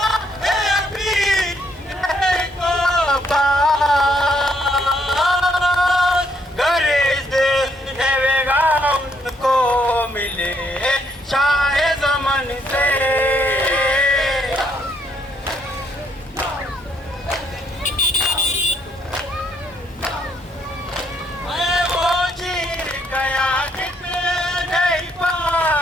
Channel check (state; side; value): normal; both; correlation 0.71